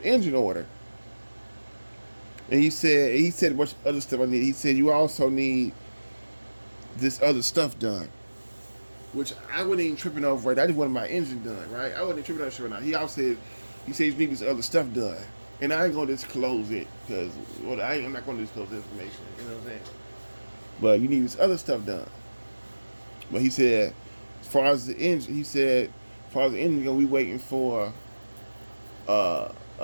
order. And he said a bunch of other stuff I need. He said you also need this other stuff done, which I wasn't even tripping over. Right, I just wanted my engine done. Right, I wasn't tripping over shit right now. He also said you need this other stuff done, and I ain't gonna disclose it because I'm not gonna disclose the information. You know what I'm saying? But you need this other stuff done. But he said, as far as the engine, we waiting for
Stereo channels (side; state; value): both; inverted; correlation -1.00